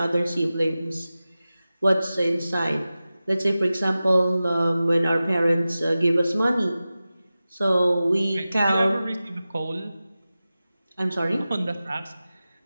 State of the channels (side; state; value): both; inverted; correlation -0.95